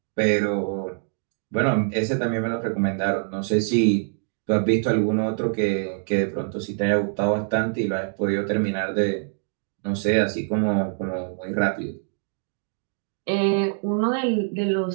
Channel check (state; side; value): silent; left; digital silence